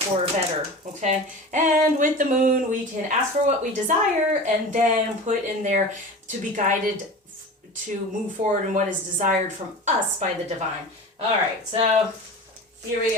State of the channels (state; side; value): normal; both; correlation 0.34